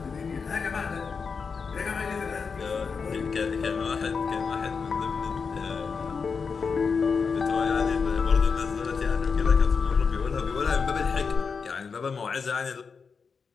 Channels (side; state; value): right; quieter; 5.4 dB